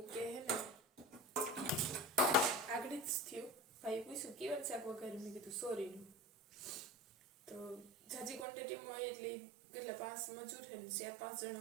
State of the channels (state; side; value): drops out; left; at 8.5 s